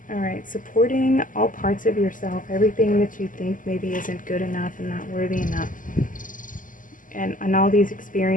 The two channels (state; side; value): late; right; 0.38 ms